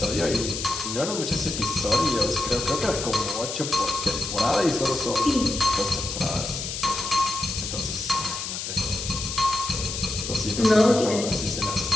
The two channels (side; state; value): left; noise; hiss, 5 dB below the sound